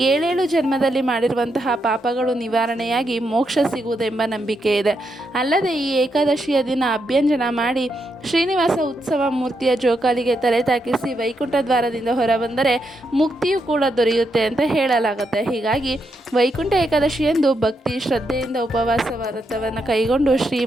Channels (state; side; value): normal; both; correlation 0.81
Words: 7 ಜನ್ಮದಲ್ಲಿ ಮಾಡಿರುವಂತಹ ಪಾಪಗಳು ನಿವಾರಣೆಯಾಗಿ ಮೋಕ್ಷ ಸಿಗುವುದೆಂಬ ನಂಬಿಕೆ ಇದೆ. ಅಲ್ಲದೆ ಈ ಏಕಾದಶಿಯ ದಿನ ಅಭ್ಯಂಜನ ಮಾಡಿ ಶ್ರೀನಿವಾಸ ಉತ್ಸವ ಮೂರ್ತಿಯ ಜೋಕಾಲಿಗೆ ತಲೆ ತಾಕಿಸಿ ವೈಕುಂಠ ದ್ವಾರದಿಂದ ಹೊರಬಂದರೆ ಮುಕ್ತಿಯೂ ಕೂಡ ದೊರೆಯುತ್ತೆ ಅಂತ ಹೇಳಲಾಗುತ್ತೆ. ಹೀಗಾಗಿ ವೈಕುಂಠ ಏಕಾದಶಿಯಂದು ಭಕ್ತಿ ಶ್ರದ್ಧೆಯಿಂದ ಉಪವಾಸ ವ್ರತವನ್ನು ಕೈಗೊಂಡು